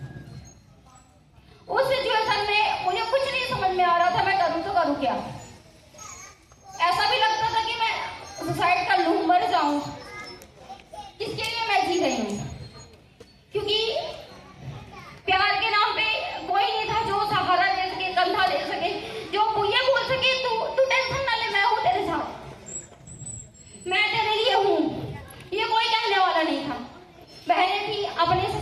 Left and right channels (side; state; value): both; identical; correlation 1.00